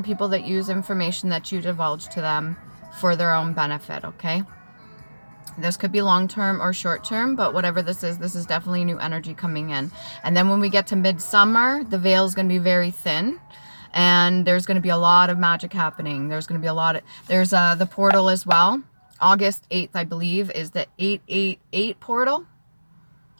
people that use information that you divulge to them for their own benefit, okay? This could be long-term or short-term, but whatever this is definitely new energy coming in. And then when we get to midsummer, the veil is going to be very thin, and there's going to be a lot of magic happening. There's going to be a lot of, there's the portal as well. August 8th, I believe, is the 888 portal.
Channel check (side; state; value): both; inverted; correlation -1.00